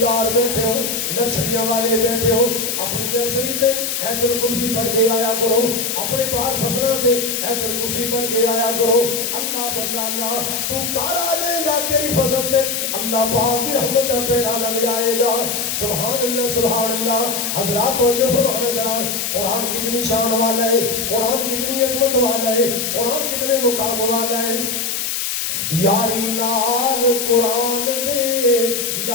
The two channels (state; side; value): noise; left; hiss, 2 dB below the sound